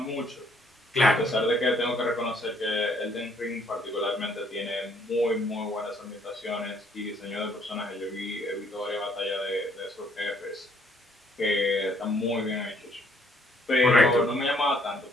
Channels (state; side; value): normal; both; correlation 0.66